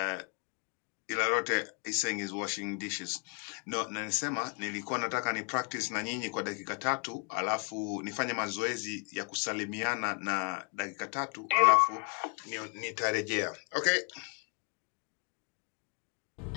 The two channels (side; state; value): right; quieter; 37.9 dB